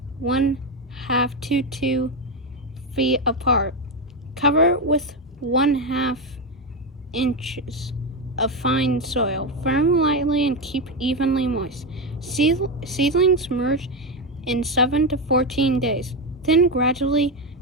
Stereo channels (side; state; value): both; normal; correlation 0.11